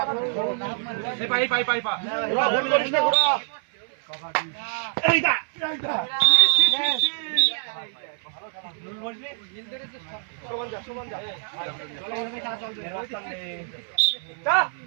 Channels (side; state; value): left; silent; 59 dB below the other